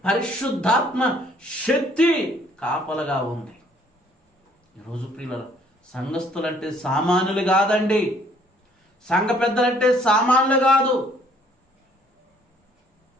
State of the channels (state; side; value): normal; both; correlation 0.61